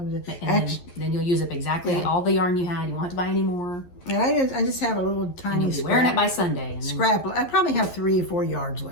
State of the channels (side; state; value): right; late; 11 ms